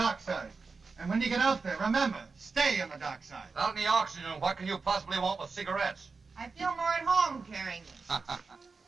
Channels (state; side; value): quieter; left; 4.5 dB